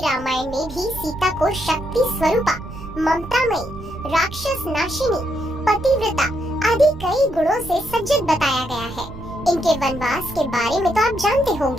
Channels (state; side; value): noise; right; rumble, 15 dB below the sound